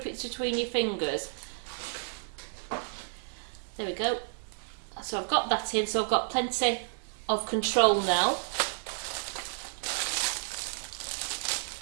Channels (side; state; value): left; silent; digital silence